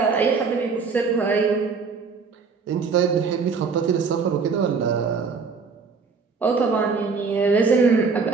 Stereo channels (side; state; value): left; quieter; 5.0 dB